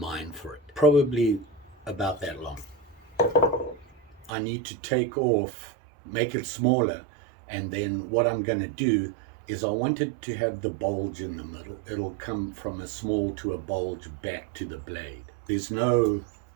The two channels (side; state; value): left; drops out; at 4.3 s